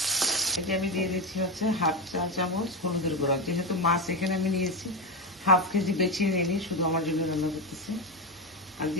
এটা আমি দিয়ে দিচ্ছি হাফ চা চামচ হলুদের গুঁড়া। যেহেতু মাছ এখানে আমি নিয়েছি, হাফ কেজি বেছিয়ে নিয়ে শুধু আমার জন্য রান্না করতেছি। আর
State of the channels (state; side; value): normal; both; correlation 0.14